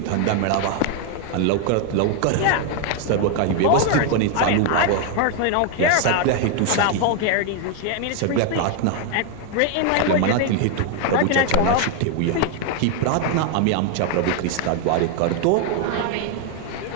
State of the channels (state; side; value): different; both; correlation 0.01